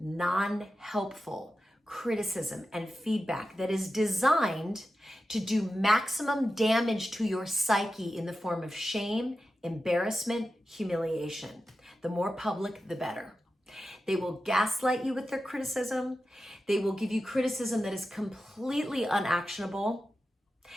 criticism and feedback that is designed to do maximum damage to your psyche in the form of shame, embarrassment, humiliation. The more public, the better. They will gaslight you with their criticism. They will give you criticism that is completely unactionable.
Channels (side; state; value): both; normal; correlation 0.92